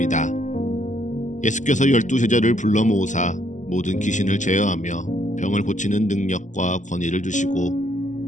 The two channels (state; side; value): late; right; 0.36 ms